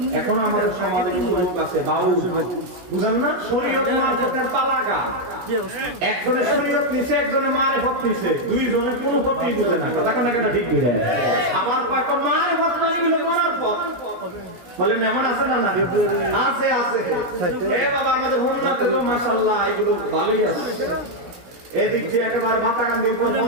এখন আমাদের সমাজে কিছু লোক আছে বাউল, বুঝেন না? শরীয়ত মারফতের তালাকা, একজনের শরীয়ত নিছে, একজনের মারেফত নিছে, দুইজনের কোনো পথই বুঝে না। কথা কেন কেন ঠিক বুঝে না? আবার একটা মারেফত না নিলে মারফত বলেন, এমন আছে না? না আছে, আছে। এ বাবা আমাদের হোমনাতে তো মাশাআল্লাহ এগুলো ভালোই আছে। এদিক দিয়ে একেবারে বাতাকান্দির পর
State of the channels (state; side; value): late; left; 17 ms